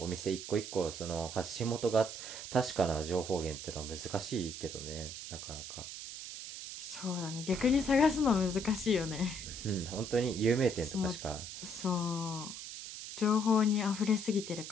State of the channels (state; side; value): noise; right; hiss, 9 dB below the sound